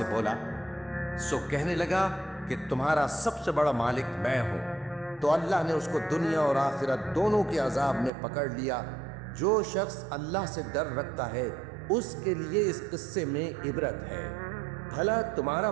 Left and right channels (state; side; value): drops out; left; at 8.1 s